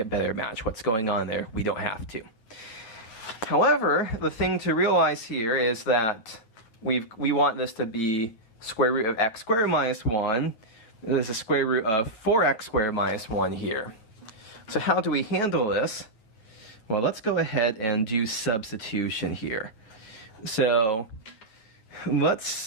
better match what's going on there. We don't have to. However, the thing to realize here is that we want this to be square root of x squared minus 1. There's a square root of 4x squared minus 1 here. So how do we handle this? Well, let's go ahead and do substitution here. So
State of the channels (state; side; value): late; right; 9.0 ms